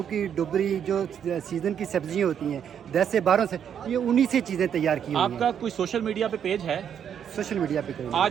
ڈبری جو سیزن کی سبزیاں ہوتی ہیں 10 سے 12 سے، یہ انہی سے چیزیں تیار کی ہوئی ہیں. آپ کا کوئی سوشل میڈیا پہ پیج ہے؟ سوشل میڈیا پہ کریں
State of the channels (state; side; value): quieter; left; 8.5 dB